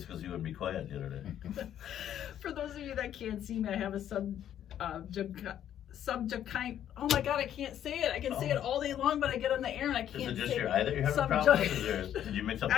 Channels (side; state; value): right; quieter; 10.6 dB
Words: because you wouldn't be quiet the other day. For those of you that can't see me, I have a oh my god, I can't say it. I can say it all day long, but I get on the air and I can't say it. Is it just your eye that you're having a problem with? Did you mix up the